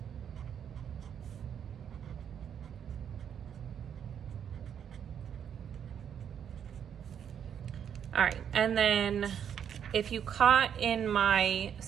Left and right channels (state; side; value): quieter; left; 8.5 dB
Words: All right, and then if you caught in my